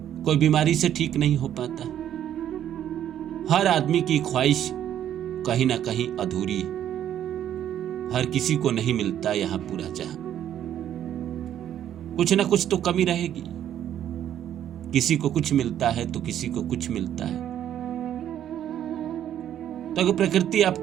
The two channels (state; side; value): quieter; left; 10.6 dB